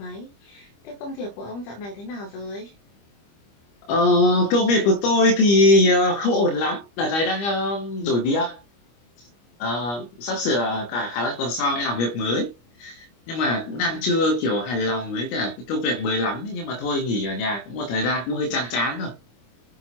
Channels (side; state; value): right; late; 25 ms